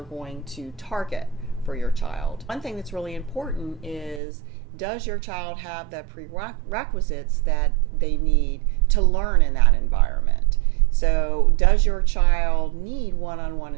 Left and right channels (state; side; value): drops out; left; at 4.2 s